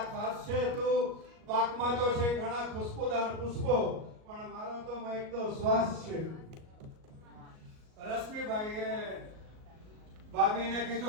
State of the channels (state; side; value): late; left; 38 ms